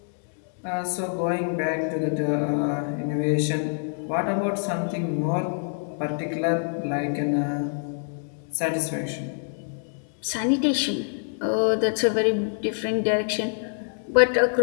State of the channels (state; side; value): silent; right; digital silence